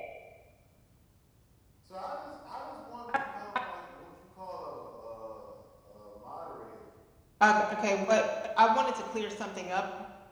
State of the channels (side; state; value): both; identical; correlation 1.00